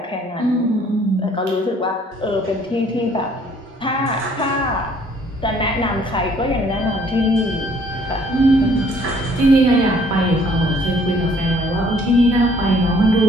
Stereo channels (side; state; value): both; normal; correlation 0.60